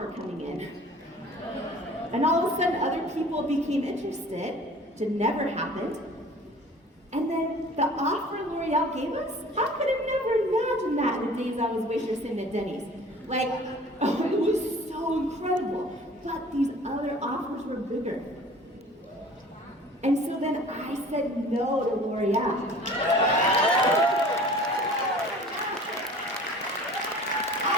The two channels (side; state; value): both; normal; correlation 0.46